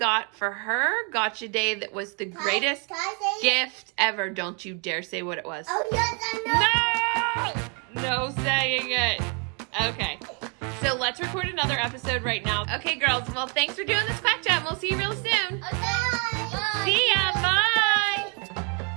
for her gotcha day that was the greatest Can I say it? gift ever. Don't you dare say what it was. Oh, yes, I know. No! No saying it. Okay. So let's record another episode right now. Okay, girls. Well, thanks for doing this Quack Chat, and we'll see you real soon. Bye. See ya. Bye.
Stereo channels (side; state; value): left; quieter; 36.3 dB